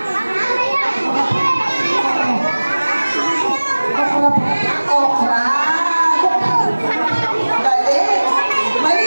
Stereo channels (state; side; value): inverted; both; correlation -1.00